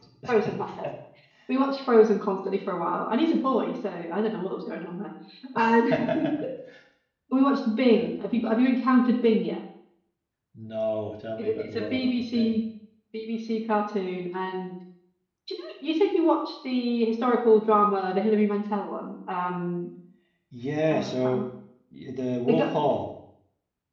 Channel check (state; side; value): identical; both; correlation 1.00